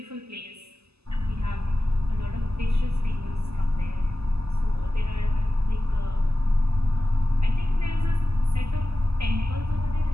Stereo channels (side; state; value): left; late; 0.79 ms